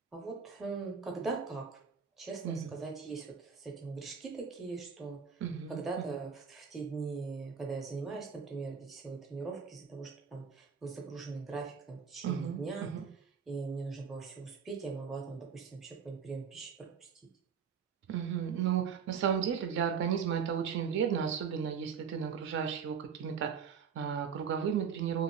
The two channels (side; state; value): left; quieter; 6.6 dB